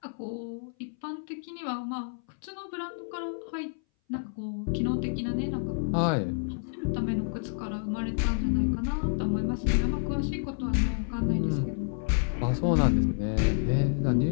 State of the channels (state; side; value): silent; right; 58 dB below the other